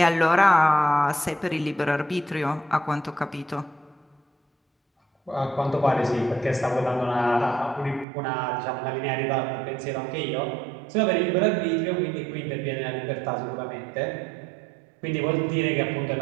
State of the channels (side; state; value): left; drops out; at 8.1 s